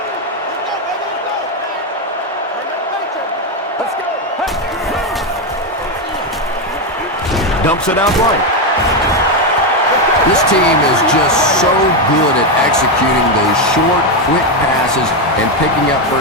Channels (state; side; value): normal; both; correlation 0.07